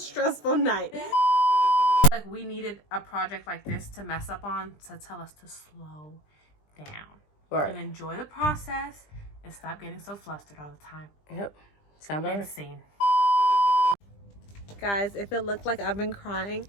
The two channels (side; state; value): right; late; 20 ms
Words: night. Like, we needed a project like this to mess up on to tell us to slow down. Right. And enjoy the process and stop getting so flustered all the time. Yep. Sound better. Scene. Guys, if it looked like I've been crying,